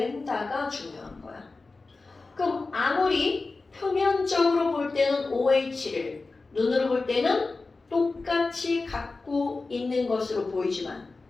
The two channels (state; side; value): quieter; right; 3.7 dB